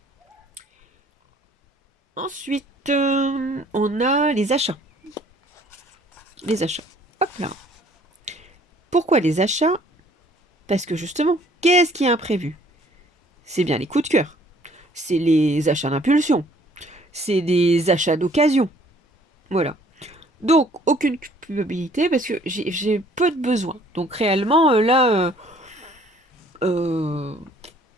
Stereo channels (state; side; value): normal; both; correlation 0.58